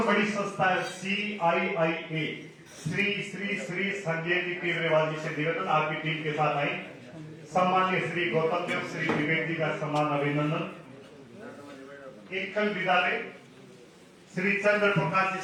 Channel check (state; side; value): identical; both; correlation 1.00